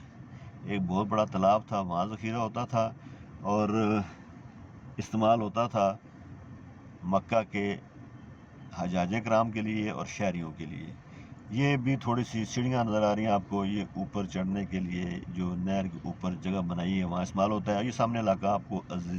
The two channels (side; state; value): both; identical; correlation 1.00